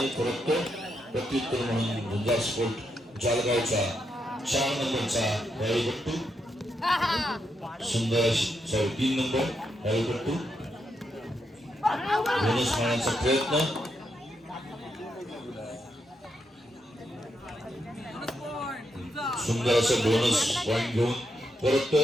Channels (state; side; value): normal; both; correlation 0.81